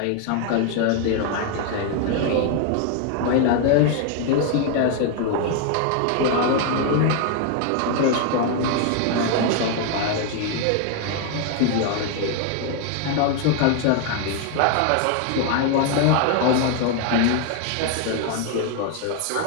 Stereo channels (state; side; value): different; both; correlation 0.01